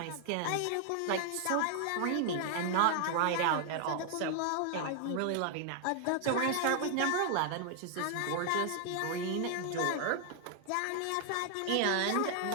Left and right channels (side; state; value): both; different; correlation 0.00